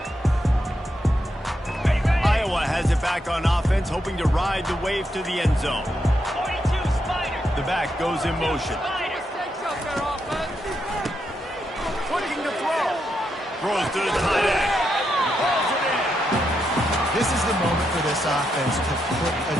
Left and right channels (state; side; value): normal; both; correlation 0.82